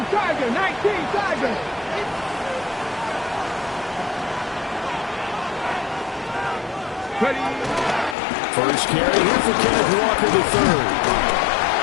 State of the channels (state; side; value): drops out; right; at 8.2 s